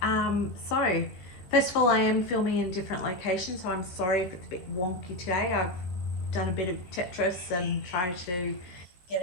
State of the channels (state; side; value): late; right; 16 ms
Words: So first of all, I am filming in different locations, so I'm sorry if it's a bit wonky today. I've done a bit of Tetris and tried to get